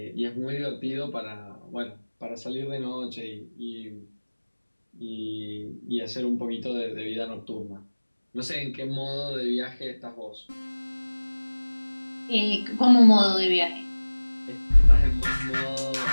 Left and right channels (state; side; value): inverted; both; correlation -1.00